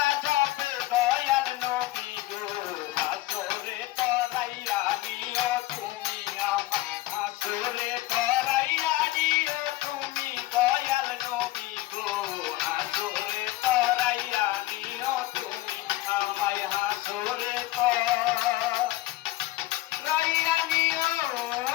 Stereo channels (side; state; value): right; quieter; 17.3 dB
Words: যাবে দয়াল নবী গো হাসরে করাইয়া নিও তুমি আমায় হাসরে করাইয়া নিও তুমি দয়াল নবী গো হাসরে করাইয়া নিও তুমি আমায় হাসরে করাইয়া নিও